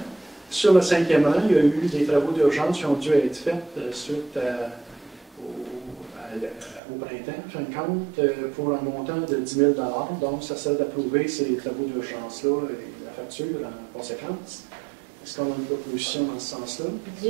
Sur le 5e rang, il y a eu des travaux d'urgence qui ont dû être faits suite au printemps, en fin de compte, pour un montant de 10 000 $. Donc, ça sert d'approuver ces travaux d'urgence-là et la facture en conséquence. Est-ce qu'on a une proposition dans ce sens-là? 10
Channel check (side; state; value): left; drops out; at 6.8 s